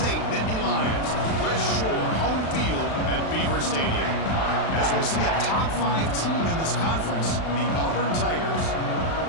Nittany Lions. West Shore home field at Beaver Stadium. As we'll see a top 5 team in this conference, the Auburn Tigers,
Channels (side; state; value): right; late; 36 ms